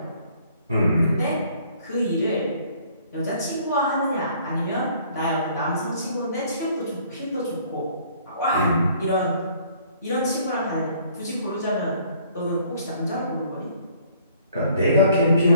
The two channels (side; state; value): both; inverted; correlation -0.59